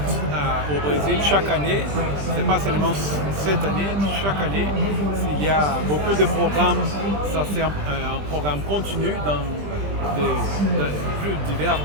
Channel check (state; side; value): late; left; 20 ms